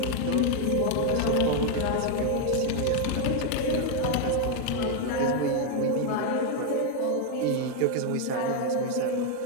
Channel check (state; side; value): different; both; correlation 0.01